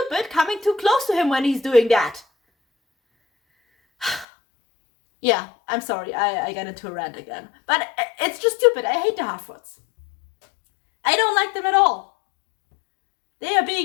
coming too close to him when he's doing that. Yeah, I'm sorry. I got into a rant again. But it's just stupid. I hate the Harfoots. I don't like them at all. They are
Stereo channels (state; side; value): drops out; right; at 4.2 s